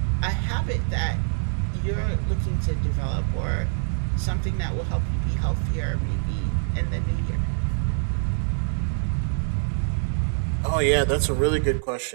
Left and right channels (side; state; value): left; silent; 62 dB below the other